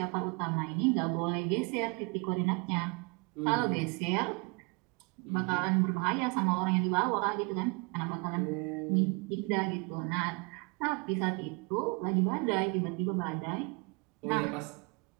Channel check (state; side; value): quieter; left; 31.2 dB